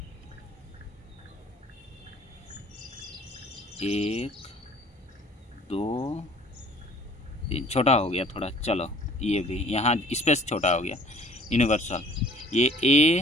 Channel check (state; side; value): normal; both; correlation 0.52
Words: एक दो तीन, छोटा हो गया थोड़ा। चलो ये भी यहाँ स्पेस छोटा हो गया। यूनिवर्सल ये